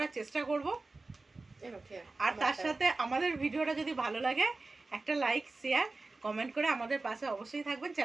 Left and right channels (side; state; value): left; quieter; 3.5 dB